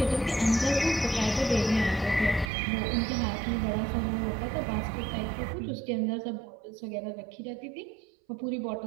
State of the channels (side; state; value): left; drops out; at 2.5 s